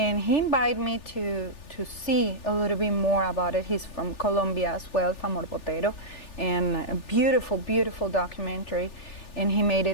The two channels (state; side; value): late; right; 3.4 ms